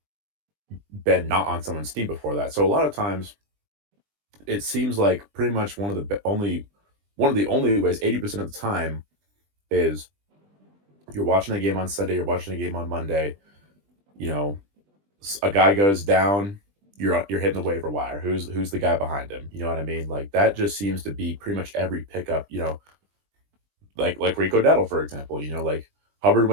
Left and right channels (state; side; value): late; left; 20 ms